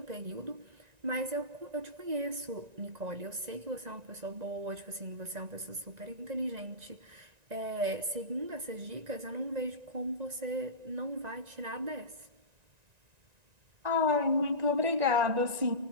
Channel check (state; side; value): late; left; 1.9 ms